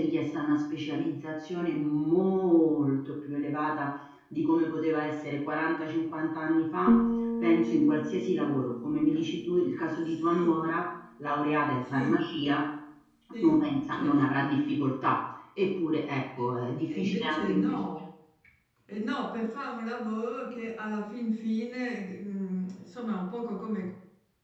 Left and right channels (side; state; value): both; identical; correlation 1.00